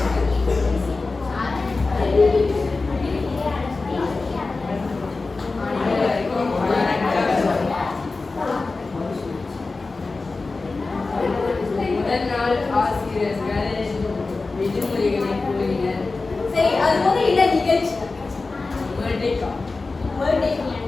முதல் நாள் ஆசிரியர்கள் விடுமுறைகளை கூறினர். சரி, அது போது என்ன நிகழ்ச்சி? பர்த்டே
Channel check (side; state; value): right; quieter; 3.7 dB